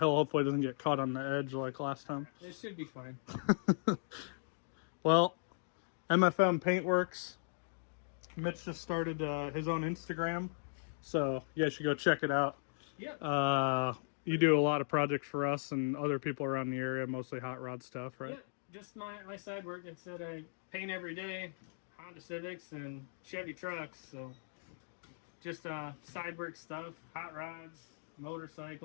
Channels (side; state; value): right; silent; digital silence